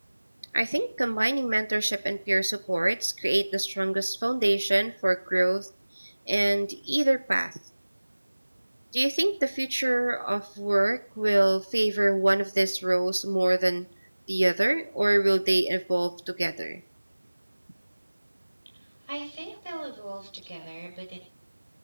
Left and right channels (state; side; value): inverted; both; correlation -1.00